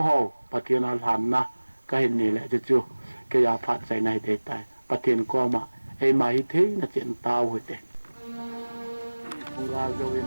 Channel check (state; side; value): inverted; both; correlation -1.00